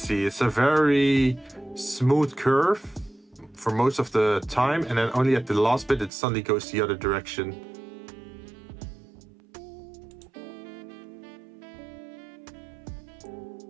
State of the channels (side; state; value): left; drops out; at 6.1 s